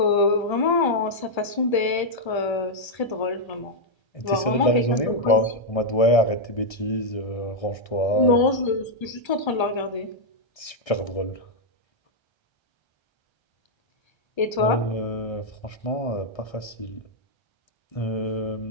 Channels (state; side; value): late; right; 1.3 ms